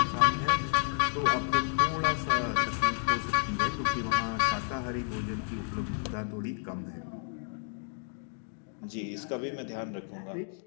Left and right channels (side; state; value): right; silent; 57 dB below the other